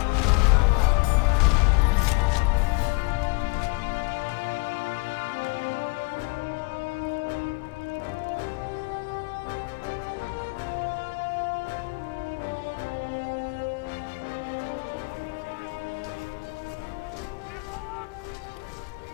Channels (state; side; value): quieter; right; 27.5 dB